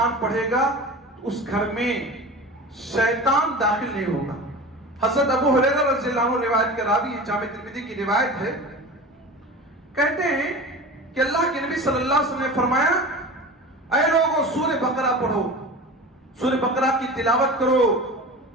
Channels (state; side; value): normal; both; correlation 0.33